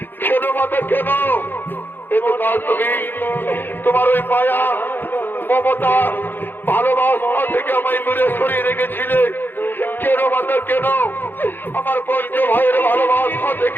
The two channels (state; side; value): late; right; 0.095 ms